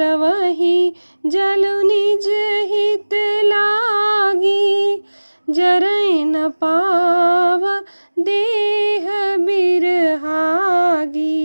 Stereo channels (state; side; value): inverted; both; correlation -1.00